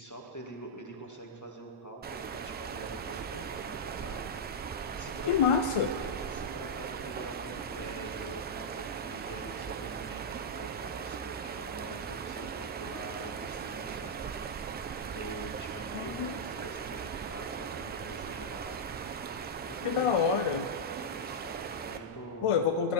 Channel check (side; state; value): both; normal; correlation -0.06